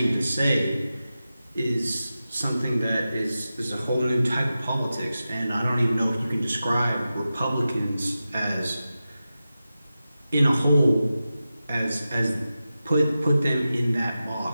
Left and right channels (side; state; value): both; inverted; correlation -0.93